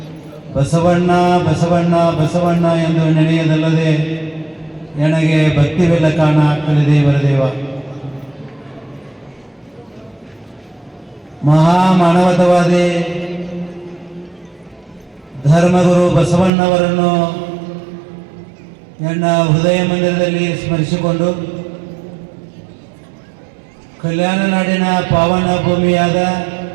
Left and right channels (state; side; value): drops out; left; at 16.5 s